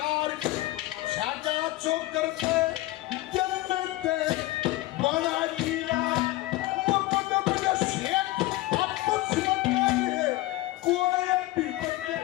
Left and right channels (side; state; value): right; quieter; 17.7 dB